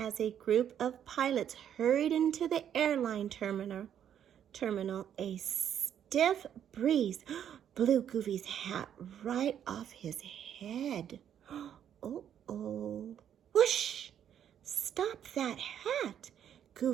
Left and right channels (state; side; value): quieter; left; 9.5 dB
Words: a group of pilots hurried into the airline terminal, a stiff breeze blew Goofy's hat right off his head. Uh-oh. Whoosh! Stop that hat!